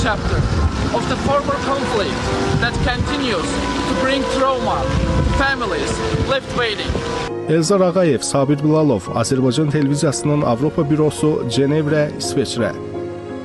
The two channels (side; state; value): both; identical; correlation 1.00